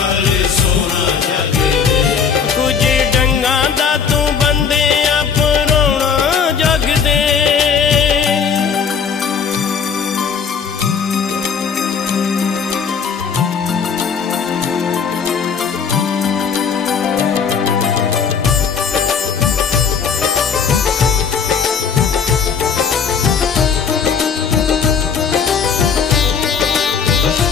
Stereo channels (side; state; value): right; quieter; 6.4 dB